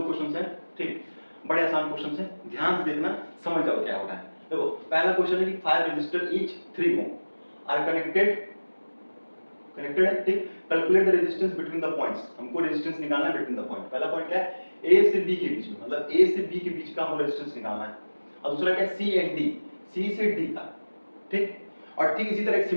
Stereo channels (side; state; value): both; inverted; correlation -1.00